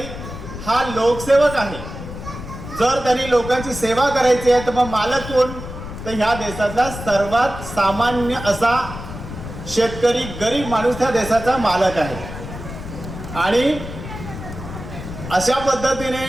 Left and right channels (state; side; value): noise; left; rumble, 10 dB below the sound